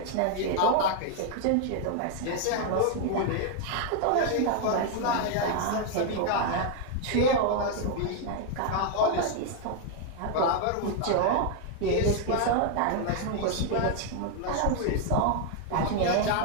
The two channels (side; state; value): both; different; correlation 0.00